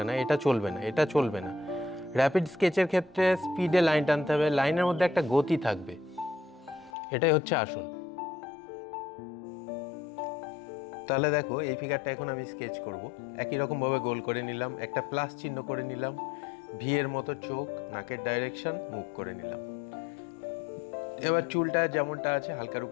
এটা চলবে না, এটা চলবে না। র্যাপিড স্কেচের ক্ষেত্রে স্পিডে লাইন টানতে হবে, লাইনের মধ্যে একটা গতি থাকবে, এটাই হচ্ছে আসল। তাহলে দেখো, এই ফিগারটা এখন আমি স্কেচ করব। একই রকমভাবে গোল করে নিলাম, একটা প্লাস চিহ্ন করে নিলাম, ভিয়ের মতো চোখ, নাকের ডাইরেকশন, মুখ করে নিলাম। এবার চুলটা যেমনটা আছে হালকার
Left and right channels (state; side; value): drops out; right; at 6.9 s